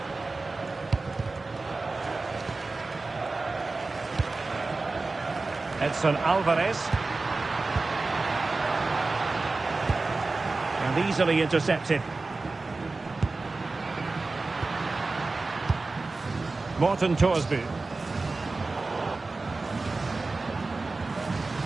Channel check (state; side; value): quieter; left; 3.6 dB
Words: Edson Alvarez. And easily intercepted. Morten Thorsby.